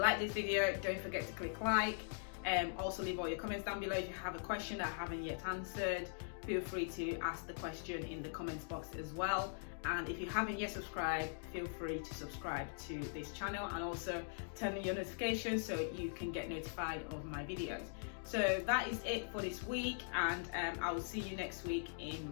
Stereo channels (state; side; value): silent; right; digital silence